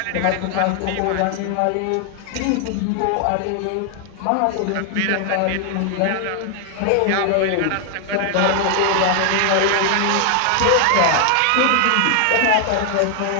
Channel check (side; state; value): both; different; correlation 0.00